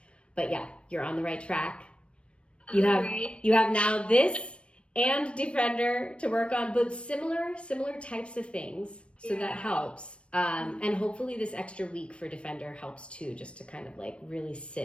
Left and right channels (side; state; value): right; late; 0.059 ms